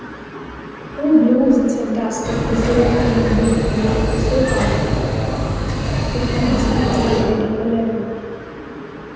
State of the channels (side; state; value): both; identical; correlation 1.00